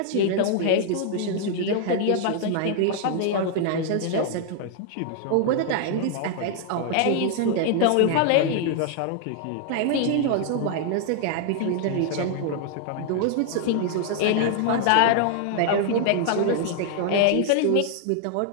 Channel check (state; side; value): different; both; correlation 0.00